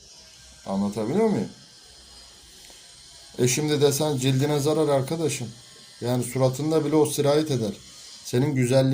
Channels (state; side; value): identical; both; correlation 1.00